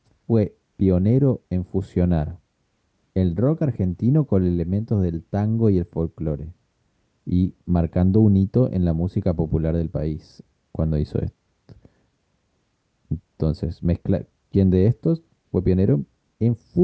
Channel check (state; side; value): identical; both; correlation 1.00